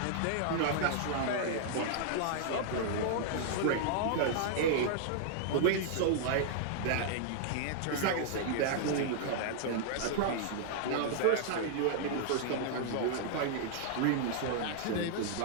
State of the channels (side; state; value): both; different; correlation -0.01